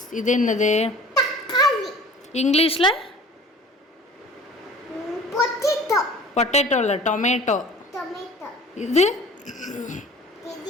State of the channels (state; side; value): normal; both; correlation 0.44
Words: இது என்னது? இங்கிலீஷில் பொட்டேட்டோ இல்லை, டொமேட்டோ. இது